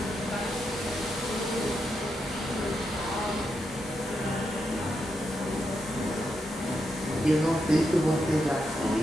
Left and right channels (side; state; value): both; normal; correlation 0.84